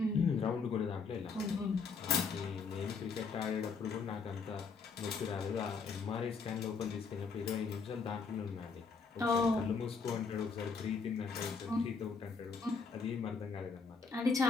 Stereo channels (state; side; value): quieter; right; 5.0 dB